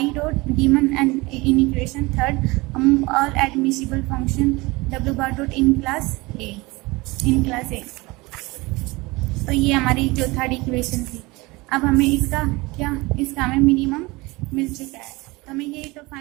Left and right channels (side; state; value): left; quieter; 23.2 dB